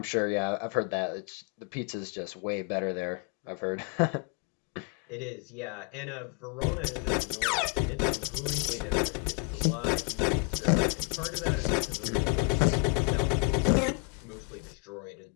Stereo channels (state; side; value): quieter; right; 32.6 dB